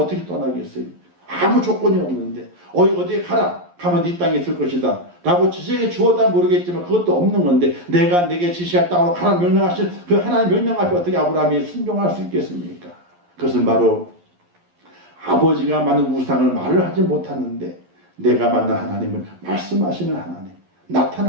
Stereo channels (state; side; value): late; left; 11 ms